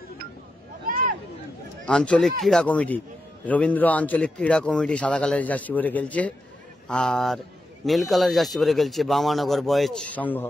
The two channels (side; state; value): both; normal; correlation 0.86